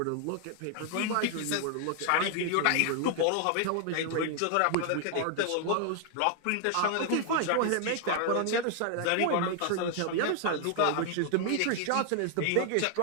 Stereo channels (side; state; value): both; different; correlation 0.00